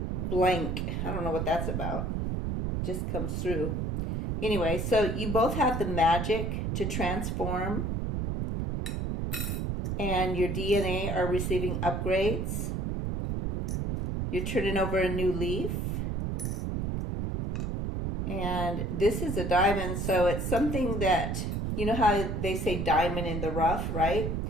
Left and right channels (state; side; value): noise; right; rumble, 1 dB below the sound